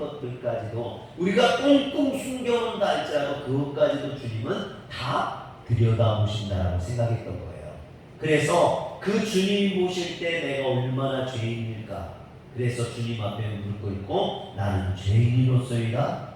우리가 꽁꽁 숨겨놓는다 할지라도 그것까지도 주님은 다 들여다보신다라고 생각했던 거예요. 그래서 그 주님 보실 때 내가 얼마나 죄인일까, 그래서 주님 앞에 무릎 꿇고 나는 죄인으로서이다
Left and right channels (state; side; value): identical; both; correlation 1.00